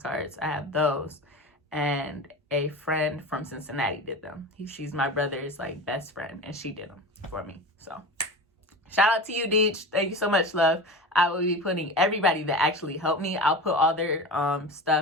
I have those. And a friend from Cincinnati did them. She's my brother's, like, best friend, and she did them for me. So shout out to you, Deej. Thank you so much, love. I will be putting everybody that actually helped me. I'll put all their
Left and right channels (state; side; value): normal; both; correlation 0.30